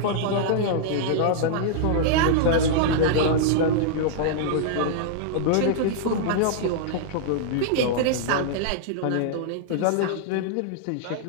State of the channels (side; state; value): both; different; correlation -0.01